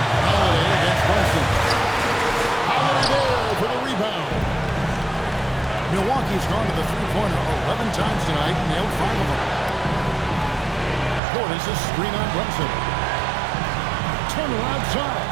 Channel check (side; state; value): left; drops out; at 11.2 s